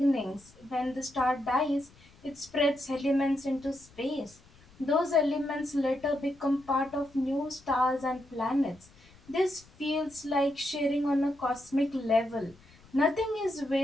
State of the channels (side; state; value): left; noise; rumble, 26 dB below the sound